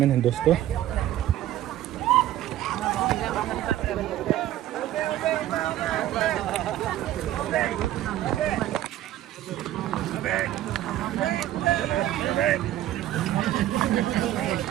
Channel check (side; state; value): left; quieter; 13.4 dB